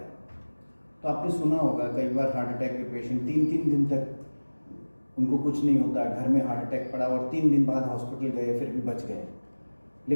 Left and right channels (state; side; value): inverted; both; correlation -1.00